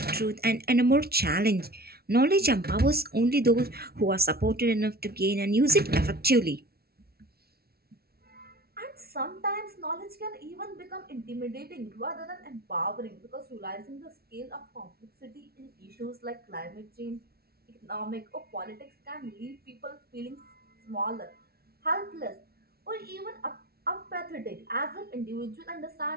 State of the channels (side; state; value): left; late; 0.45 ms